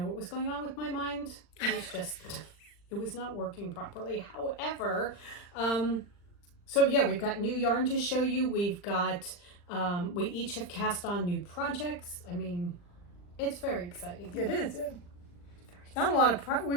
what was going on with my mind. It was just, it was not working properly. However, so yeah, we've got new yarn to show you. We've got, we each have cast on new projects. I mean, it's very exciting. It is. Not a lot of,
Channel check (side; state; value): right; late; 40 ms